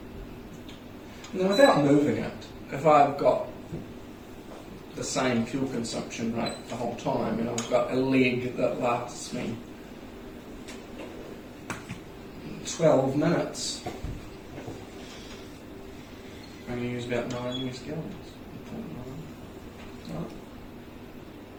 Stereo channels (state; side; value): identical; both; correlation 1.00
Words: And then without moving it, if I've got the same fuel consumption rate the whole time, and I've got a leg that lasts me 12 minutes, I'm going to use about 9 US gallons. 0.9. Right.